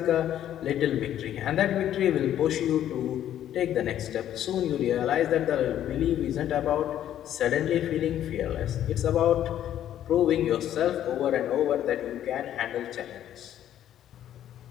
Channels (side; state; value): right; quieter; 11.2 dB